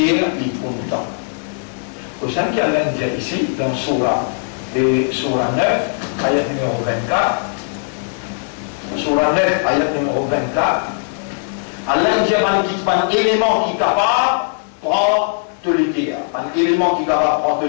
il prend le temps. Au sein qu'il y a l'Indien ici, dans Surah 9, ayat numéro 24, Surah 9, ayat numéro 24, Allah dit un élément qui est capable de prendre tout légué. Un élément qui est capable de prendre tout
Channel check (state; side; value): silent; right; digital silence